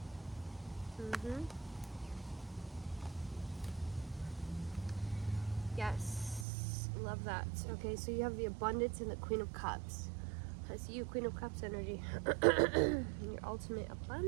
Yes. Love that. Okay, so you have the abundance and the Queen of Cups. I see you, Queen of Cups energy. Your ultimate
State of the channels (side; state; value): left; drops out; at 6.5 s